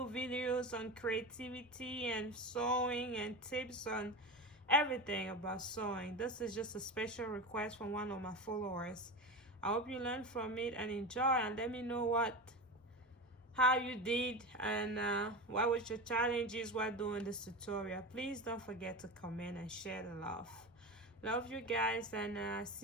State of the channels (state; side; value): normal; both; correlation 0.24